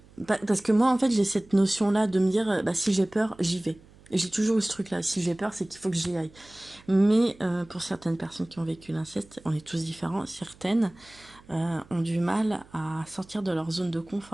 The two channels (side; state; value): right; noise; hum, 25 dB below the sound